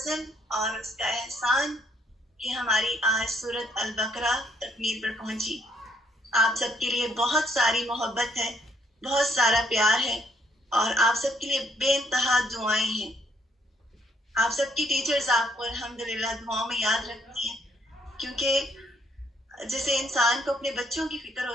اور اس کا احسان کہ ہماری آج سورۃ البقرہ تکمیل پر پہنچی. آپ سب کے لیے بہت ساری محبت ہے، بہت سارا پیار ہے، اور آپ سب کے لیے بے انتہا دعائیں ہیں. آپ سب کی ٹیچرز آپ کو الحمدللہ دعاؤں میں یاد رکھتی ہیں، کیونکہ جیسے انسان کو اپنے بچوں کی فکر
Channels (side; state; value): both; normal; correlation 0.69